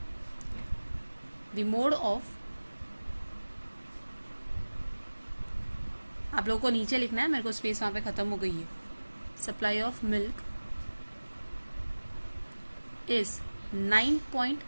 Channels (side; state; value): both; inverted; correlation -1.00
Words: द मोड ऑफ, आप लोगों को नीचे लिखना है, मेरे को स्पेस वहां पे खत्म हो गई है, सप्लाई ऑफ मिल्क इज